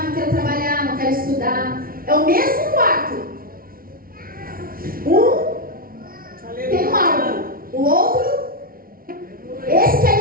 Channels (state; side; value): late; left; 0.43 ms